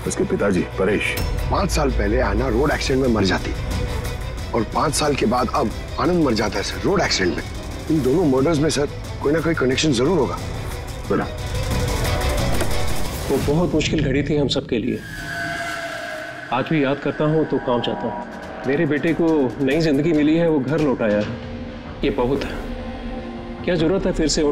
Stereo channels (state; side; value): identical; both; correlation 1.00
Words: उसके पिताजी परेश। 5 साल पहले ऐना रोड एक्सीडेंट में मर जाती और 5 साल के बाद अब आनंद मर जाता है सर रोड एक्सीडेंट में। इन दोनों मर्डर्स में सर कोई ना कोई कनेक्शन जरूर होगा। बड़ा वो बहुत मुश्किल घड़ी थी हम सबके लिए। आज भी याद करता हूँ तो कांप जाता हूँ। मेरे बेटे को नई जिंदगी मिली है, वो घर लौटाया है, ये बहुत है। क्या जरूरत है फिर से